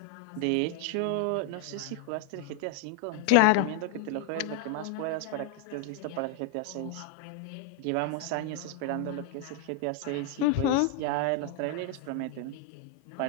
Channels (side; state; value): both; different; correlation 0.00